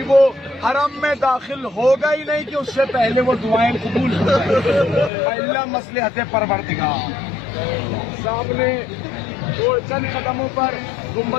وہ حرم میں داخل ہوگا ہی نہیں کہ اس سے پہلے وہ دعائیں قبول ہو جائیں. اللہ مصلحت پروردگار. سامنے چند قدموں پر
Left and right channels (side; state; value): right; drops out; at 5.1 s